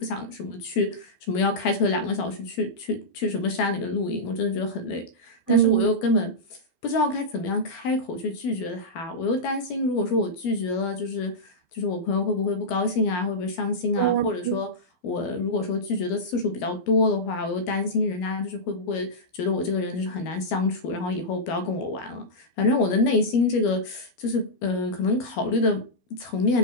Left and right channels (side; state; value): right; late; 12 ms